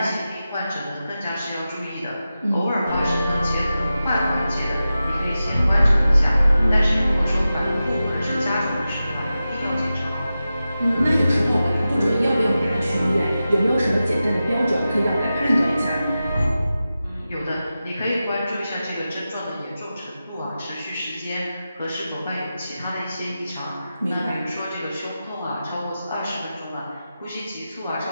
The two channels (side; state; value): both; inverted; correlation -0.93